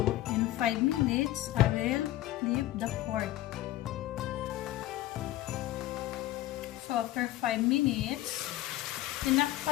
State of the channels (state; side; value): quieter; right; 15.4 dB